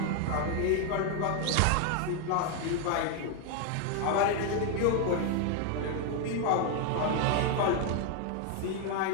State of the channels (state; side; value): different; both; correlation 0.00